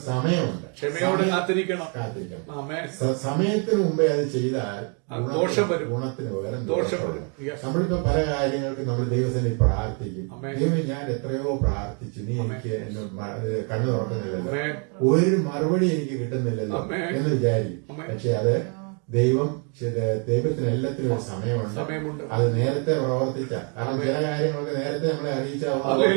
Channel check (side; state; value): left; quieter; 38.3 dB